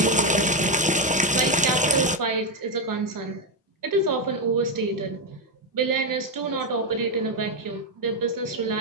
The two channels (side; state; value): both; normal; correlation 0.06